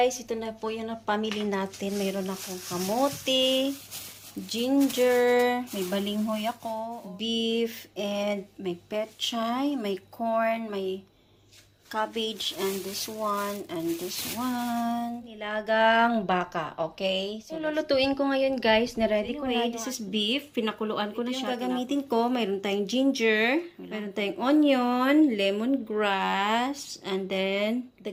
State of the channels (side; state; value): both; identical; correlation 1.00